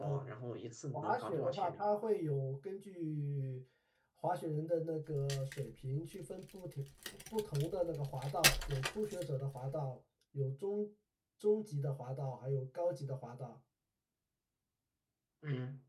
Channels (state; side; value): identical; both; correlation 1.00